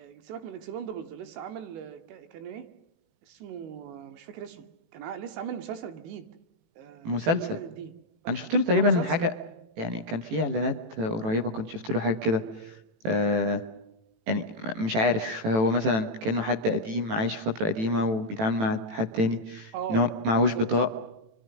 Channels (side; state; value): left; late; 18 ms